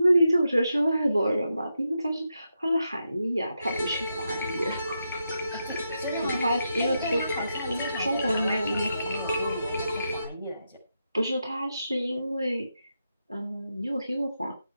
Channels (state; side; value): inverted; both; correlation -0.85